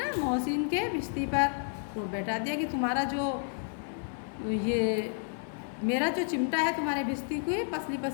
मोहसिन के भिश्ती पर रोब बैठा दिया कि तुम्हारा जो ये मेरा जो चिमटा है तुम्हारे भिश्ती को पसली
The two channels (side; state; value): right; silent; digital silence